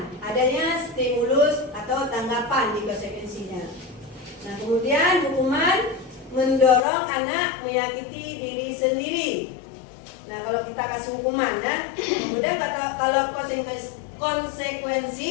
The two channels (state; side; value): drops out; right; at 6.8 s